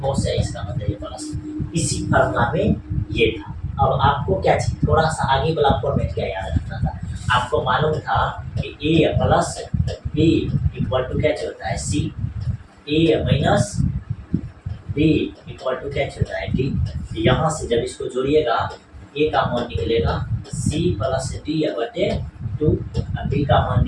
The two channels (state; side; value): identical; both; correlation 1.00